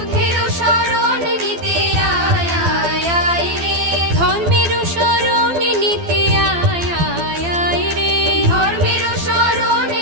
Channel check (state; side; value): late; left; 12 ms